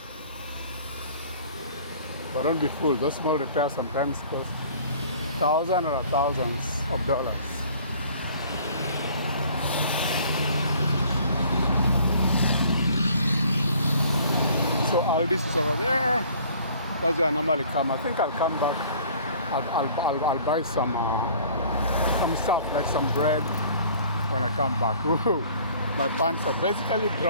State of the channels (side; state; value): both; inverted; correlation -0.53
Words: But don't be fooled, those small repairs sometimes cost thousands or thousands of dollars. So Aldi's is over there. That's where I normally come. I think I'll come back. I'll buy some stuff like some bread when I come back. Woo-hoo. My pants are basically